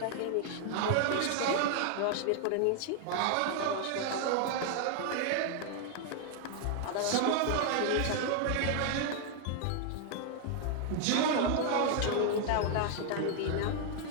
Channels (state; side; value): different; both; correlation 0.00